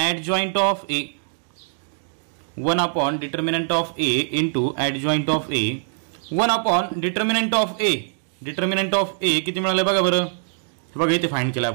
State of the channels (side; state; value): left; silent; digital silence